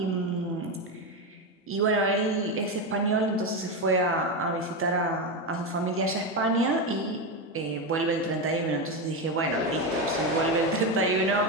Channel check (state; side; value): normal; both; correlation 0.13